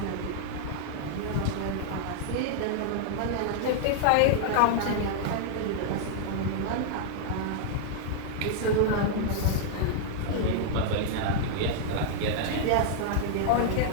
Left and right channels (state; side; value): different; both; correlation -0.01